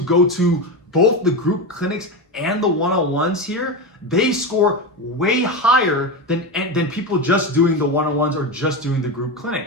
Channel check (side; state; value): both; normal; correlation 0.18